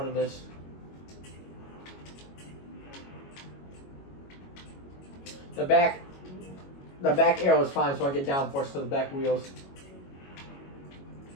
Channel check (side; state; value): right; late; 22 ms